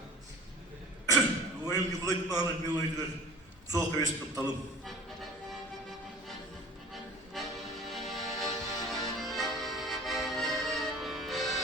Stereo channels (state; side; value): normal; both; correlation 0.43